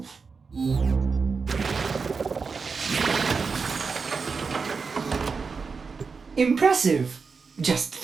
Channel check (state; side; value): quieter; left; 5.0 dB